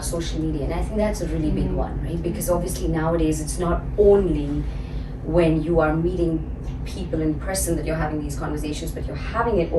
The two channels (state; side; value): identical; both; correlation 1.00